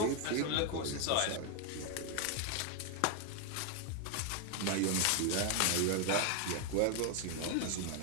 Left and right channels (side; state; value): both; different; correlation 0.01